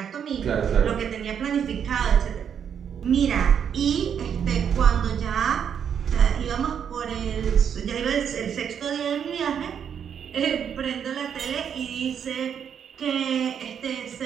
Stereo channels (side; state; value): left; quieter; 8.0 dB